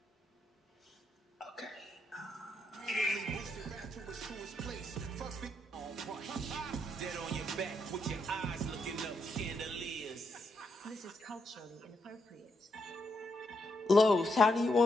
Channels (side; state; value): both; normal; correlation 0.80